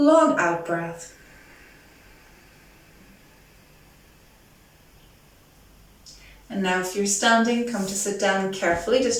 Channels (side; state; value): both; identical; correlation 1.00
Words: out breath. And now if you're standing, come to sit down carefully,